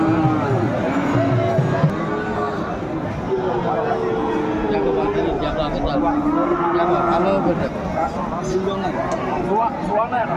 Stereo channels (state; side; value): identical; both; correlation 1.00